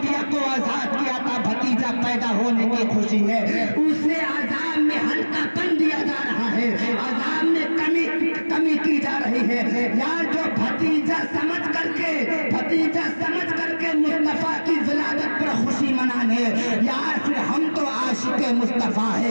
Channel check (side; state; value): both; inverted; correlation -1.00